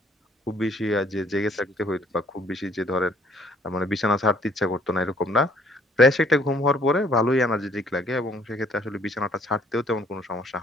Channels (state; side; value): normal; both; correlation 0.61